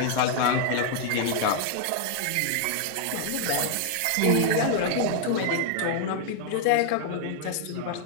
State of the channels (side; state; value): both; different; correlation 0.00